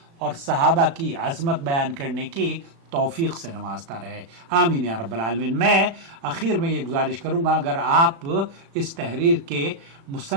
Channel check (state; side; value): late; left; 36 ms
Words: اور صحابہ کی عظمت بیان کرنے کی توفیق سے نوازتا رہے. آمین یا رب العالمین. میں آخر میں یہ گزارش کروں گا، اگر آپ اس تحریر کے